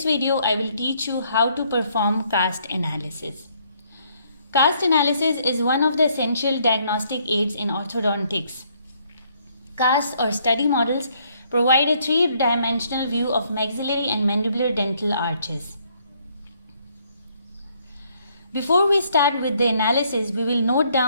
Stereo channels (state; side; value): inverted; both; correlation -0.68